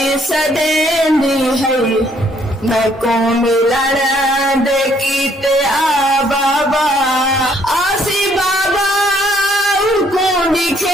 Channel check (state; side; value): normal; both; correlation 0.66